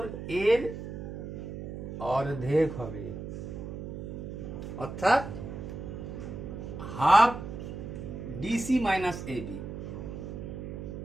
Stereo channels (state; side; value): noise; right; hum, 7 dB below the sound